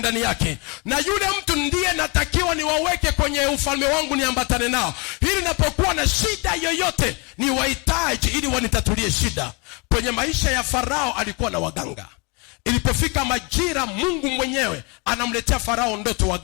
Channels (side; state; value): right; quieter; 30.6 dB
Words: yake. Na yule mtu ndiye natakiwa niwaweke kwenye ufalme wangu, niambatane nao ili napokuwa na shida yoyote ni wahitaji ili wanitatulie shida. Kwenye maisha ya Farao alikuwa na waganga. Ilipofika majira, Mungu mwenyewe anamletea Farao ndoto,